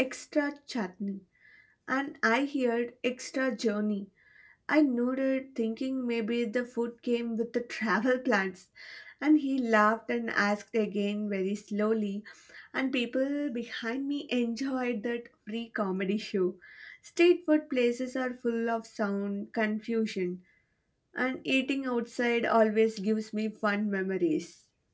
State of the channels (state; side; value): identical; both; correlation 1.00